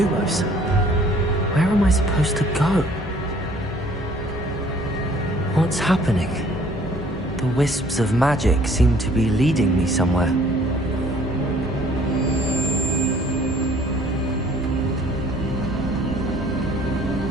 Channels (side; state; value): both; normal; correlation 0.57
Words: where am I supposed to go? What's happening? The wisps of magic seem to be leading me somewhere.